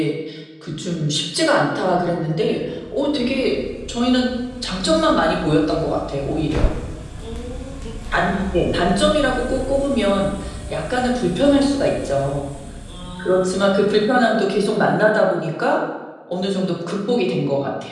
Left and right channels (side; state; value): both; identical; correlation 1.00